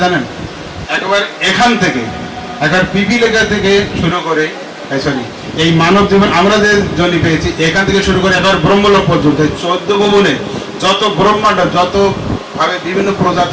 জানেন? একবার এখান থেকে, একবার পিপিলিকা থেকে শুরু করে, সরি, এই মানব জীবন আমরা যে জনি পেয়েছি এখান থেকে শুরু করে একবার ব্রহ্মলোক পর্যন্ত 14 ভুবনে যত ব্রহ্মাণ্ড, যত ভাবে বিভিন্ন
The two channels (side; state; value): both; identical; correlation 1.00